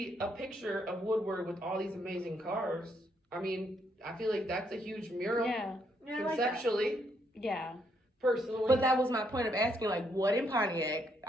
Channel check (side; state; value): both; normal; correlation 0.74